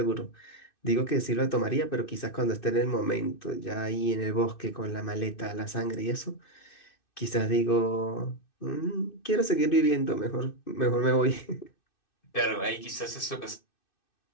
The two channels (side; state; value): right; late; 2.6 ms